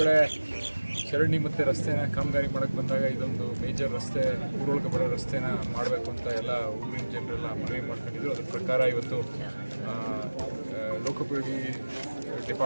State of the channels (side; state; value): both; inverted; correlation -1.00